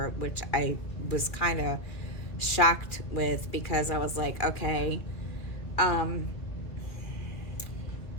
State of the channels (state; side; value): late; right; 2.2 ms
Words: which I was kind of shocked with, because I was like, okay,